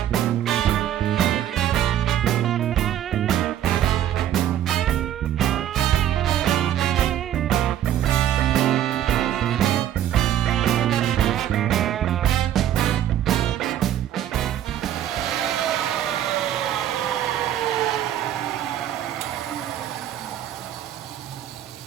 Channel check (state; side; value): quieter; left; 11.2 dB